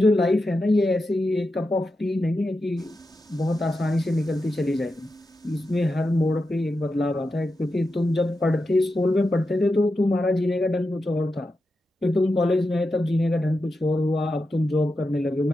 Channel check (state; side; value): normal; both; correlation 0.89